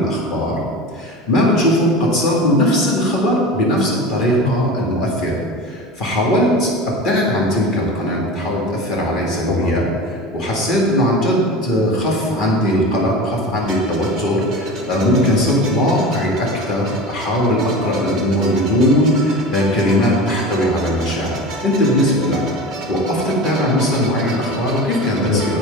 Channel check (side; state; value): both; normal; correlation 0.31